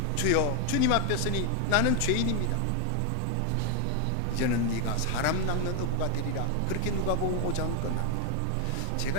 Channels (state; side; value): different; both; correlation 0.00